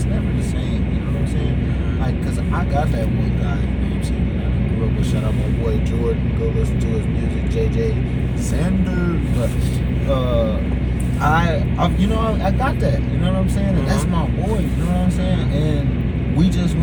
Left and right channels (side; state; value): both; identical; correlation 1.00